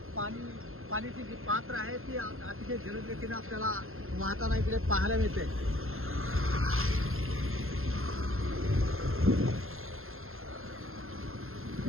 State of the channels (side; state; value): left; late; 0.61 ms